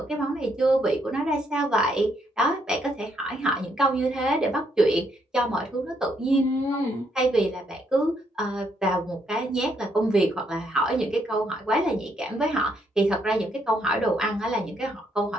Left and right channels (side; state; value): both; normal; correlation 0.74